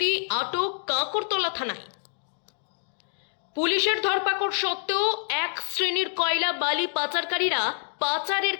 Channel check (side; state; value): right; silent; digital silence